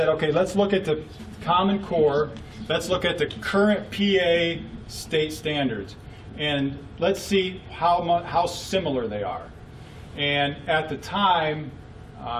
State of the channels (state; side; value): identical; both; correlation 1.00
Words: okay, let's look at the Common Core, let's look at the current PA state standards, and let's see how similar they are. And at the time,